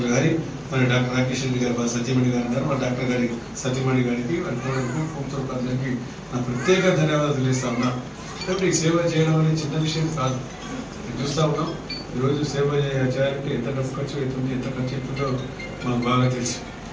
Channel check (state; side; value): identical; both; correlation 1.00